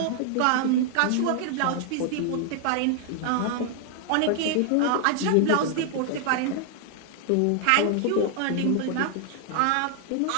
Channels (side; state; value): both; different; correlation 0.00